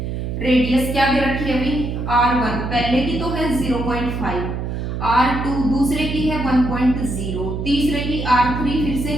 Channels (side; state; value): right; noise; hum, 4 dB below the sound